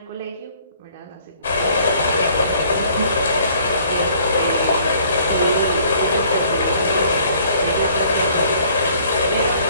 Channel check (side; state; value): both; inverted; correlation -0.59